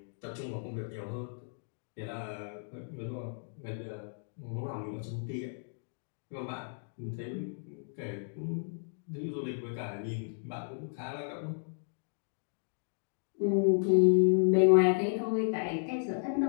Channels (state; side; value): silent; right; digital silence